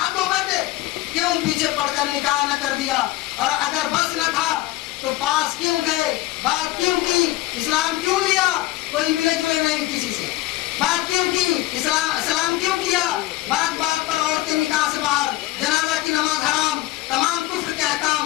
ہو بیٹھے، کیوں پیچھے پڑ کر نکاح نہ کر دیا، اور اگر بس نہ تھا تو پاس کیوں گئے، بات کیوں کی، اسلام کیوں لیا، کوئی ملے جلے نہیں کسی سے، بات کیوں کی، اسلام کیوں کیا، بات بات پر عورتیں نکاح سے باہر، جنازہ کی نماز حرام، تمام کفر کے احکام،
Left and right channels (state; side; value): quieter; right; 17.1 dB